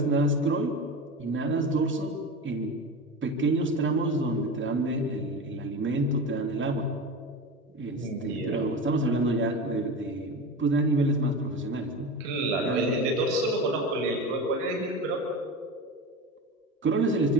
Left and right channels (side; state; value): both; normal; correlation 0.27